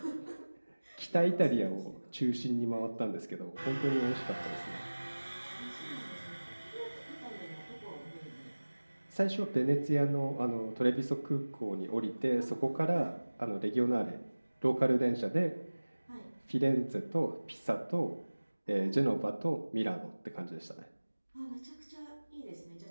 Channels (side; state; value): both; inverted; correlation -1.00